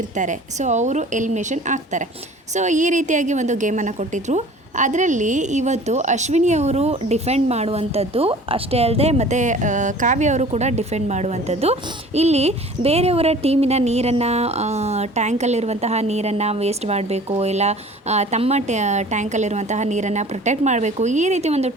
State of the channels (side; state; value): both; normal; correlation 0.46